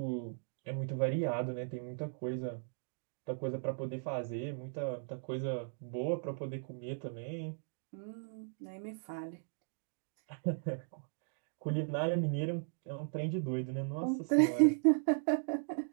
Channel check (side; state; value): left; silent; digital silence